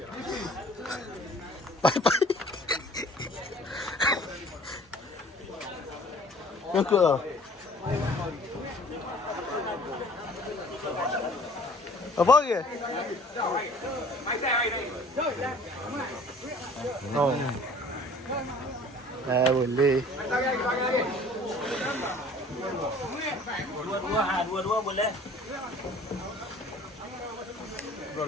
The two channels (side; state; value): both; normal; correlation 0.50